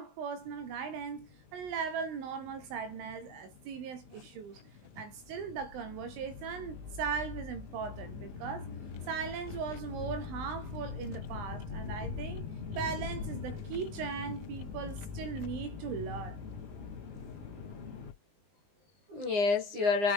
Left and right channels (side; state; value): left; late; 20 ms